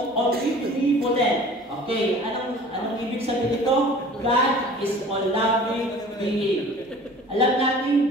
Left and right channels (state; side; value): normal; both; correlation 0.45